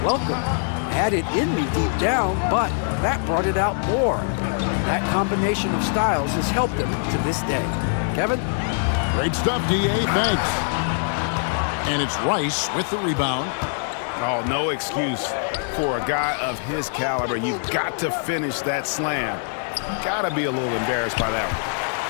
welcome. I had it in me deep down, but that brought it out more. That combination of styles has helped him to this day. Kevin? Great stuff, D.A. Thanks. And it's Rice with the rebound. Oh, no excuse for a guy of his caliber. You've got to finish that slam. Got to be a little embarrassed by that one.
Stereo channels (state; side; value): silent; right; digital silence